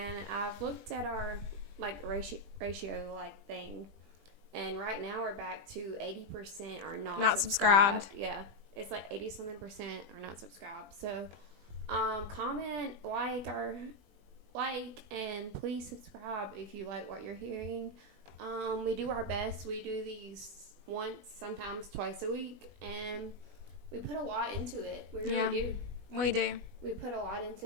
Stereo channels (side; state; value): left; late; 20 ms